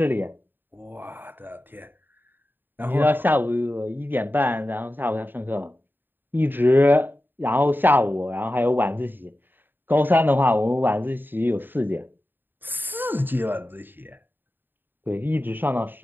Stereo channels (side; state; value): left; late; 0.094 ms